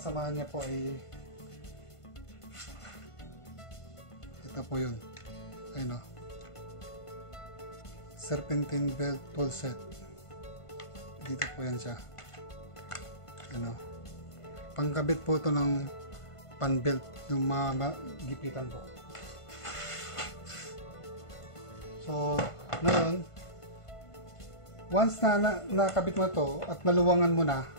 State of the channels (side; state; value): right; late; 1.5 ms